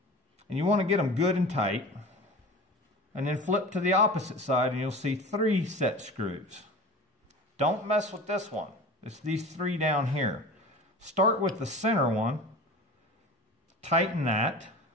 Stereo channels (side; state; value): both; normal; correlation 0.36